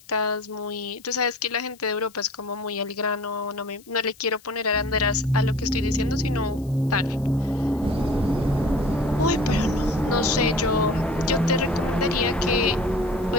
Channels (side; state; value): left; noise; hiss, 26 dB below the sound